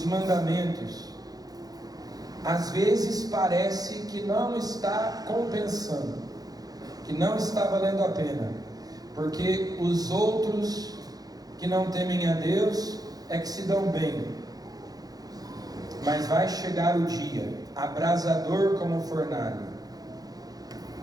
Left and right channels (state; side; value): late; left; 0.18 ms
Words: mandamentos. Às vezes parece que não está compensando, que não está valendo a pena, porque os outros que não temem a Deus é que se dão bem. Mas vai chegar o dia, abrasador como fornalha.